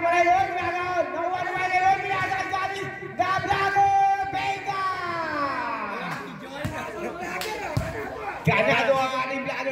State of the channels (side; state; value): both; identical; correlation 1.00